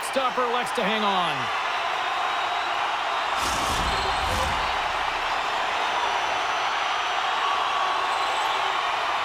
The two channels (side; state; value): both; identical; correlation 1.00